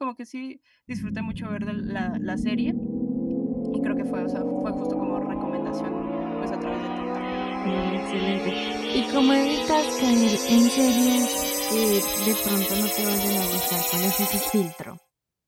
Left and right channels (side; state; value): both; identical; correlation 1.00